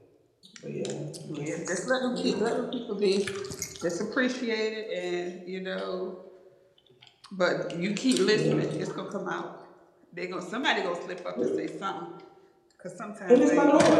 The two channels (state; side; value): identical; both; correlation 1.00